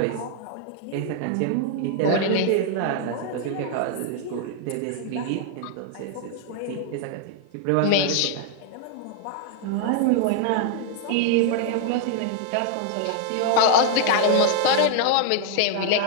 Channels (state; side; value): different; both; correlation 0.00